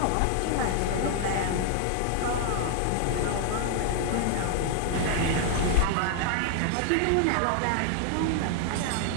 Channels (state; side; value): different; both; correlation 0.00